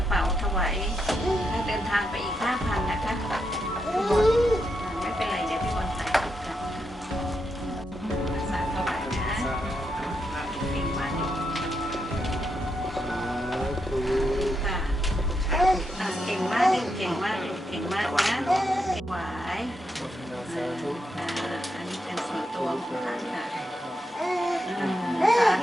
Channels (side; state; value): both; normal; correlation 0.82